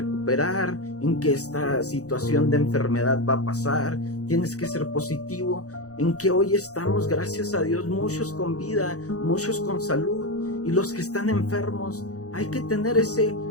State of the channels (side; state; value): right; late; 0.66 ms